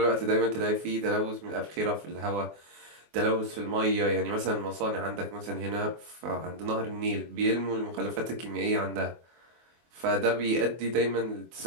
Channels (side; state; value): left; late; 24 ms